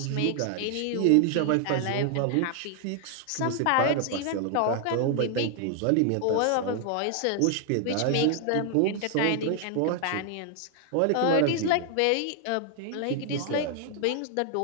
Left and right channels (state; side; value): different; both; correlation 0.00